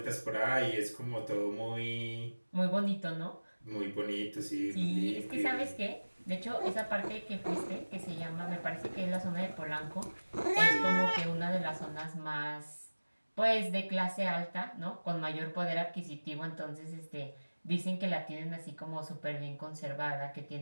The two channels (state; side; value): inverted; both; correlation -1.00